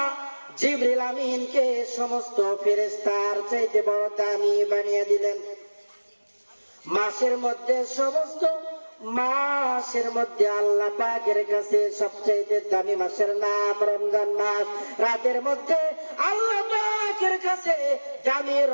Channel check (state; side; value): inverted; both; correlation -1.00